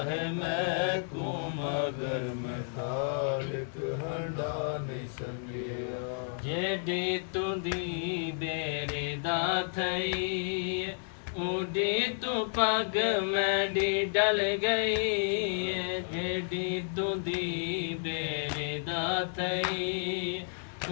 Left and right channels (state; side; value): silent; right; 55 dB below the other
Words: है मैं को मगर मैं हाल कहना नहीं सके जेडी तुंदी बेरे दा थई उड़ी तू पग मेरी डल गई जेडी तुदी बेरे दा थई